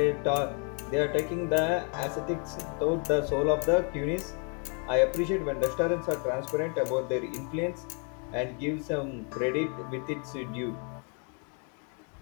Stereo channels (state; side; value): quieter; right; 37.8 dB